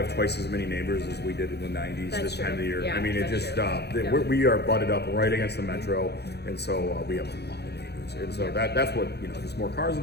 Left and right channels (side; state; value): right; late; 0.48 ms